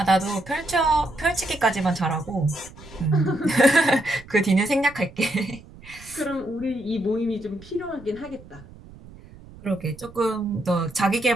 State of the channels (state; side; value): noise; right; rumble, 20 dB below the sound